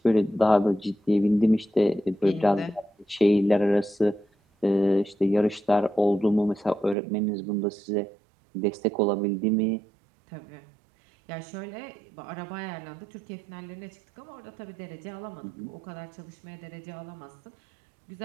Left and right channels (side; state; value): left; drops out; at 7.0 s